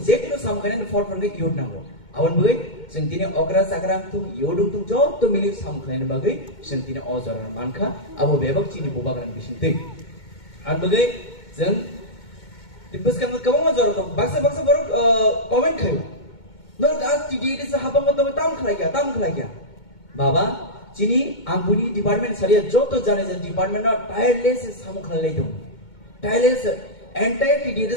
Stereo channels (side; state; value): right; late; 2.2 ms